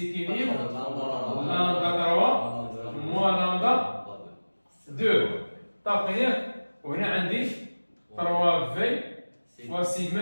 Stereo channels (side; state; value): both; inverted; correlation -1.00